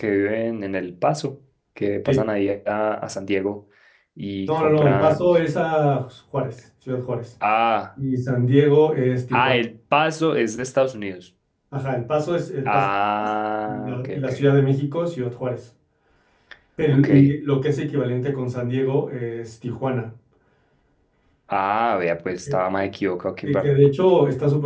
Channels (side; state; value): both; identical; correlation 1.00